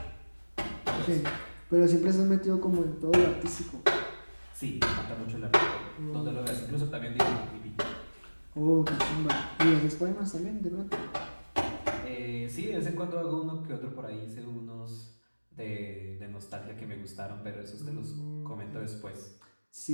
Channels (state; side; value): inverted; both; correlation -1.00